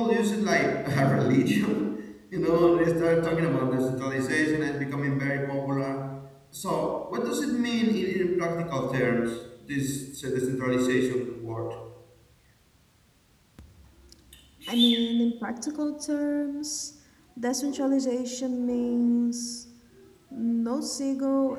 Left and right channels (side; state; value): both; identical; correlation 1.00